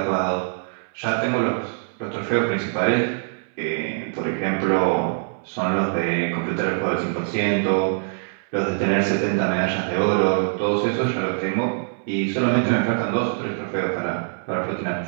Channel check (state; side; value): silent; left; 63 dB below the other